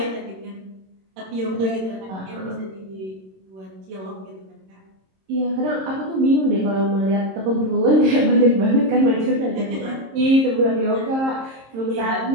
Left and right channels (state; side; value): late; left; 26 ms